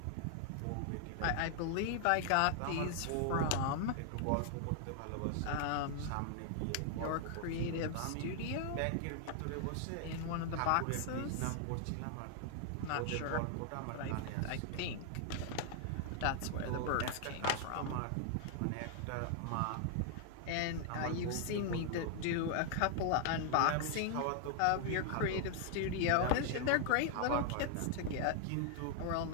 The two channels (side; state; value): both; different; correlation 0.00